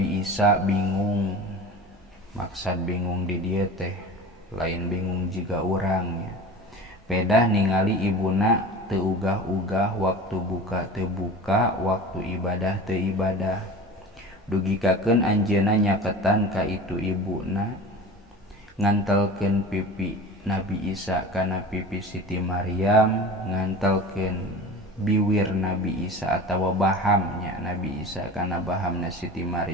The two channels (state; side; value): normal; both; correlation 0.35